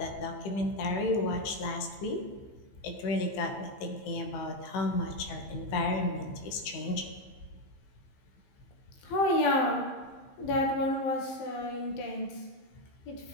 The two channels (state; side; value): late; right; 15 ms